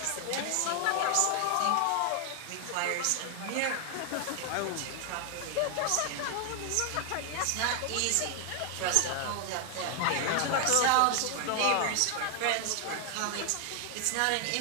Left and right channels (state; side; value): different; both; correlation 0.00